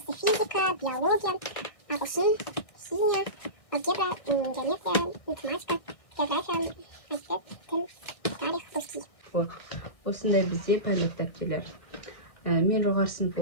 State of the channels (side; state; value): right; late; 1.6 ms